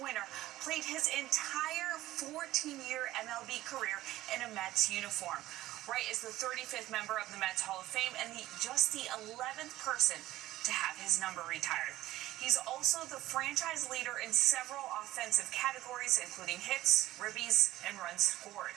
winner played his entire 14-year MLB career in a Mets uniform. Wright is the 35th member of the Mets Hall of Fame and just the 11th person to have his number retired. He's also the franchise leader in several offensive categories, including hits, ribbies, and runs scored.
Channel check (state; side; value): quieter; left; 15.7 dB